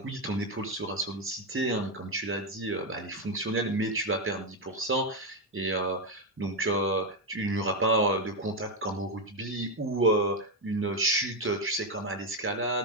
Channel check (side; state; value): both; normal; correlation 0.07